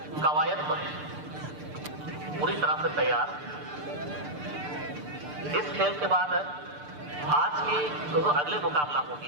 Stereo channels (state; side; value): late; left; 6.7 ms